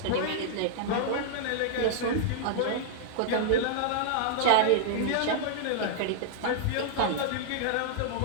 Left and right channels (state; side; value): different; both; correlation -0.01